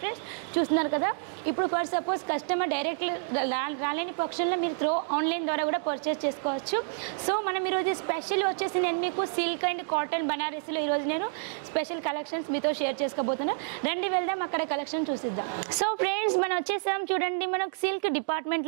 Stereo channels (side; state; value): left; silent; digital silence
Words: ఫ్రెండ్స్. చూస్తున్నారు కదా. ఇప్పుడు ఫర్ సపోజ్ కస్టమర్ డైరెక్ట్లీ రాలేని పక్షంలో మీరు త్రూ ఆన్లైన్ ద్వారా కూడా పర్చేస్ చేసుకోవచ్చు. సో మనం ఈరోజు స్పెషల్ వచ్చేసి నేను మీకు సిల్క్ అండ్ కాటన్ బనారసీలో ఈరోజు నేను స్పెషల్ కలెక్షన్స్ మీతో షేర్ చేసుకోబోతున్నాను. రండి వెళ్దాం అక్కడ కలెక్షన్ చూసిద్దాం. సో ఫ్రెండ్స్ మనం వచ్చేసాం చూడండి మనకు సిల్క్